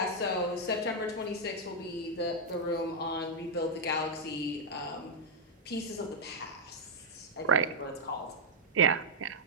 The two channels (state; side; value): normal; both; correlation -0.04